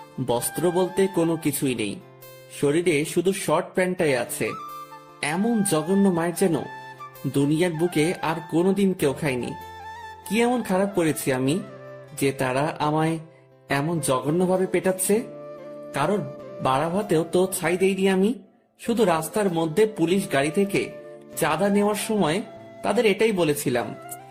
বস্ত্র বলতে কোনো কিছুই নেই, শরীরে শুধু শর্ট প্যান্টটাই আছে। এমন জঘন্য মায়ের যেন দুনিয়ার বুকে আর কোনোদিন কেউ খায়নি। কি এমন খারাপ করেছি আমি যে তারা আমায় এমন জঘন্যভাবে পেটাচ্ছে? কারোর বাড়া ভাতেও তো ছাই দেইনি আমি। শুধু রাস্তার মধ্যে পুলিশ গাড়ি থেকে চাঁদা নেওয়ার সময় তাদের এটাই বলেছিলাম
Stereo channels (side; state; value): both; identical; correlation 1.00